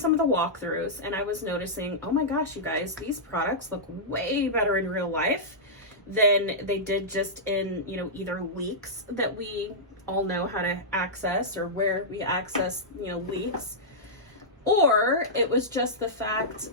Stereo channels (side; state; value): both; normal; correlation -0.12